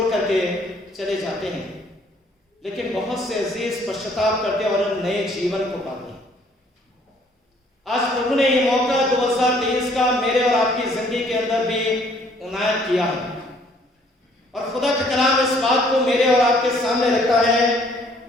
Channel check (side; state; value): both; normal; correlation 0.61